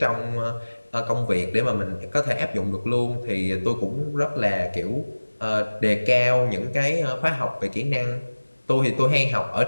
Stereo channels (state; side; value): inverted; both; correlation -1.00